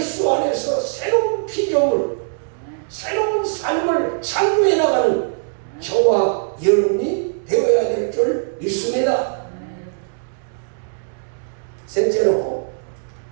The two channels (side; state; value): left; silent; digital silence